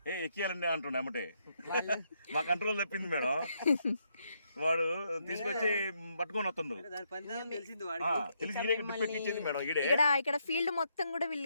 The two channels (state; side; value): inverted; both; correlation -0.77